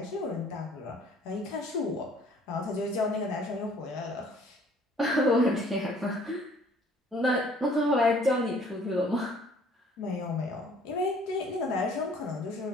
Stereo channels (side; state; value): both; normal; correlation 0.56